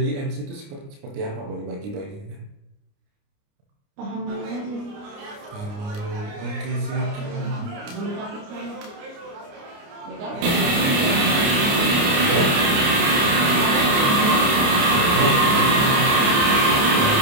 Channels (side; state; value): left; late; 29 ms